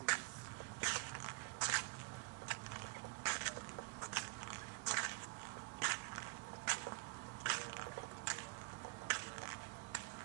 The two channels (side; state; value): left; quieter; 29.3 dB